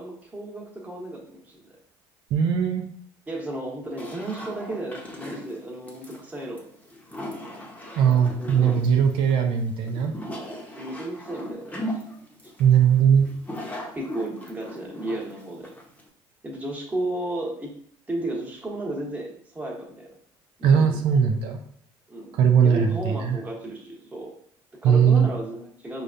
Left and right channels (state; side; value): quieter; left; 6.2 dB